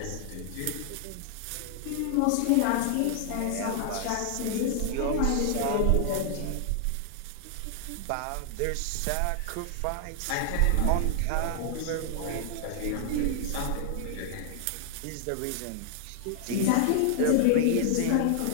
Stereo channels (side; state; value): both; different; correlation 0.00